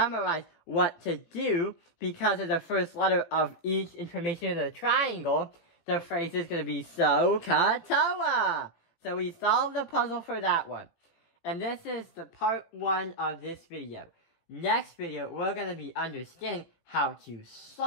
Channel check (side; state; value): right; late; 17 ms